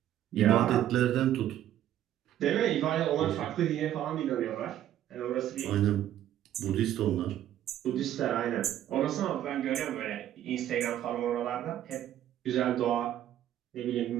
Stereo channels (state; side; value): quieter; left; 11.8 dB